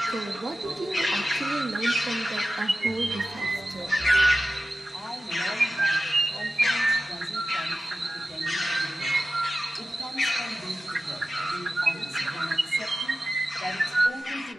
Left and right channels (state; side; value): normal; both; correlation 0.94